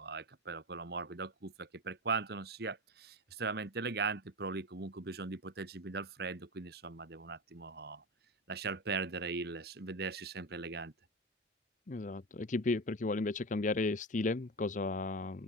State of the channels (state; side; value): normal; both; correlation 0.23